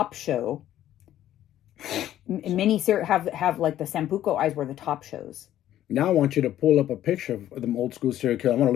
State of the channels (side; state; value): right; quieter; 12.4 dB